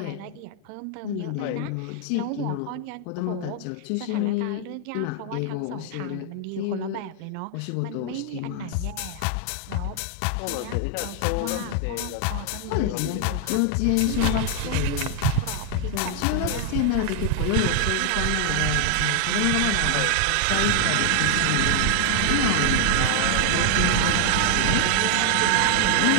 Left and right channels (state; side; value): different; both; correlation 0.00